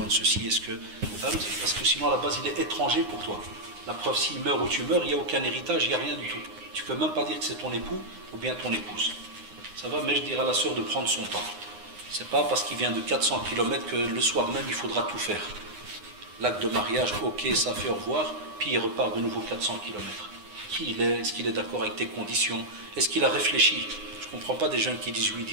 de ceci, est-ce que... Parce que sinon à la base il est étranger pour toi. La preuve, s'il meurt ou tu meurs, il n'y a aucun héritage, il n'y a rien du tout. Tu ne peux même pas dire que c'est ton époux ou bien ton épouse. Ça va, mais je dirais à la sœur de prendre son temps. C'est pas parce qu'il vient de 400 km que le soir même il faudra tout faire. L'acte de mariage, ok, ça fait au revoir, puis il repart de nouveau 400 km. Qui il est? Est-ce qu'il est d'accord avec tes conditions? Est-ce qu'il a réfléchi? Je ne comprends pas des jeunes qui disent oui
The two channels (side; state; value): left; late; 9.7 ms